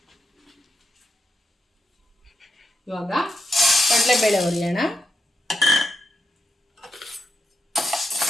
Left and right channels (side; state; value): both; normal; correlation 0.85